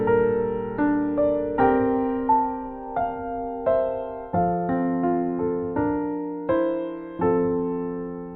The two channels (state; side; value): identical; both; correlation 1.00